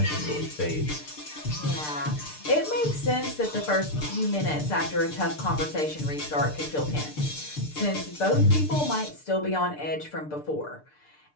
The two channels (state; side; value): late; right; 6.7 ms